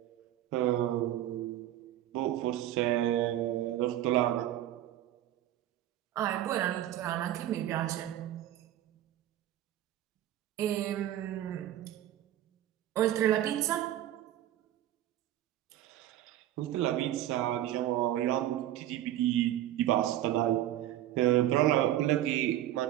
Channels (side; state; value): left; quieter; 12.9 dB